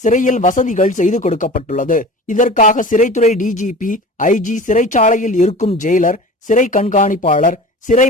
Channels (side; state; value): both; normal; correlation 0.37